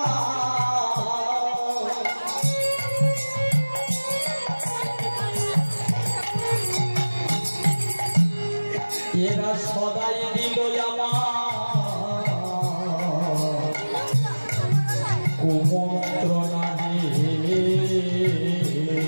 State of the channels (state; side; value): inverted; both; correlation -1.00